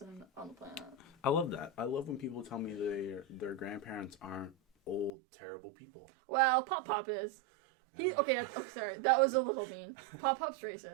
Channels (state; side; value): drops out; left; at 5.1 s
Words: on the planet. I love that. I love when people tell me their grandparents aren't old, terrible people. Well, Pop-Pop is. Okay, sorry. That was a little mean. Pop-Pop's